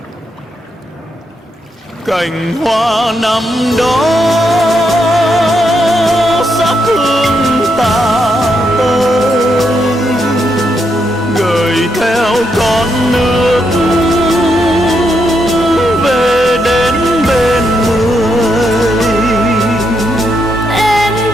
Cành hoa năm đó sắc hương tàn tới, gửi theo con nước về đến bên người. Em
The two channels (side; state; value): both; normal; correlation 0.80